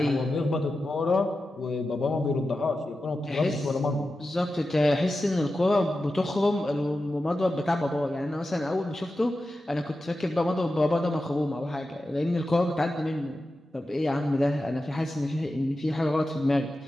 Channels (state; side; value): normal; both; correlation 0.92